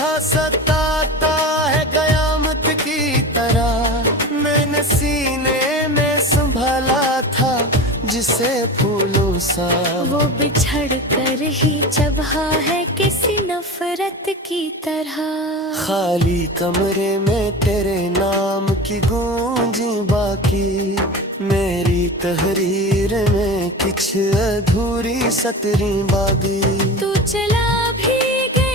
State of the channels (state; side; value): normal; both; correlation 0.30